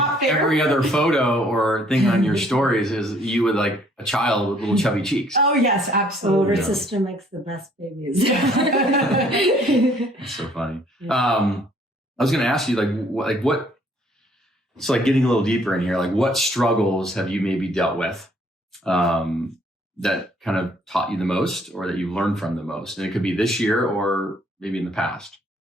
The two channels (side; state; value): both; normal; correlation 0.62